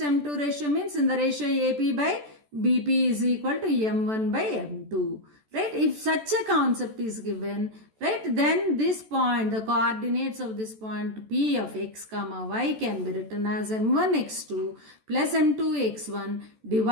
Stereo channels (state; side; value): late; left; 14 ms